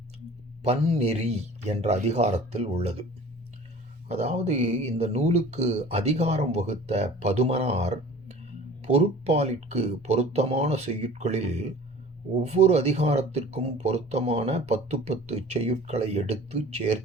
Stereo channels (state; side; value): normal; both; correlation 0.44